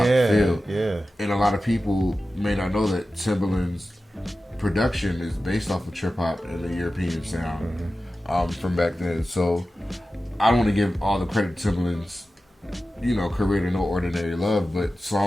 feel. Yeah. And a lot of people may not know that Timbaland's production is based off of trip hop and the European sound from back then. So I don't want to give all the credit to Timbaland's career to No Ordinary Love, but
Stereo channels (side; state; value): both; normal; correlation 0.94